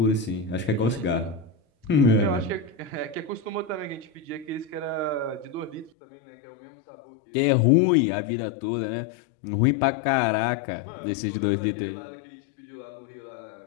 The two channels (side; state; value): right; drops out; at 5.9 s